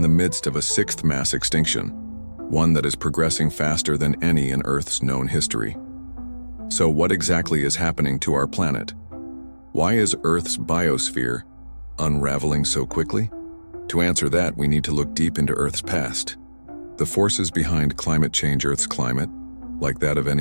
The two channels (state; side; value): inverted; both; correlation -1.00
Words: the midst of a sixth mass extinction, one that is progressing faster than any in Earth's known history. So what exactly is happening to our planet? Why is Earth's biosphere unraveling so quickly? To answer that, we need to look deep into Earth's past. The forces behind climate change. Earth's climate, like that of